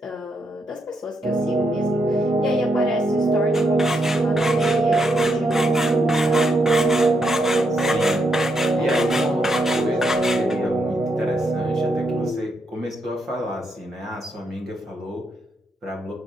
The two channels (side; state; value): both; normal; correlation 0.79